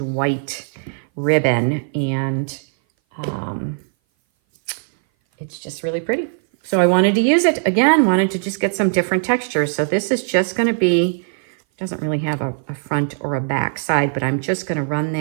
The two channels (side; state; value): left; silent; 59 dB below the other